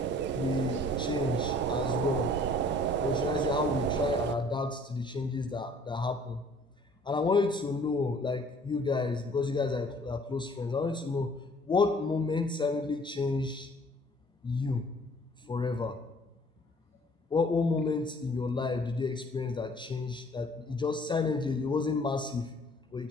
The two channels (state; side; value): normal; both; correlation 0.55